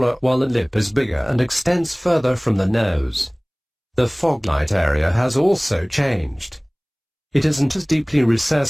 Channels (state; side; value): identical; both; correlation 1.00